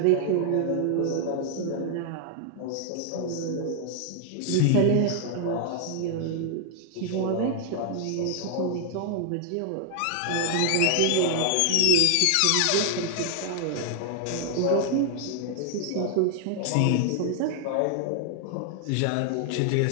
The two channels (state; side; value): different; both; correlation 0.00